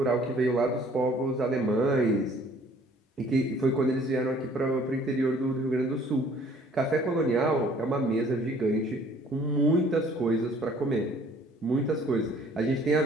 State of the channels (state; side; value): normal; both; correlation 0.56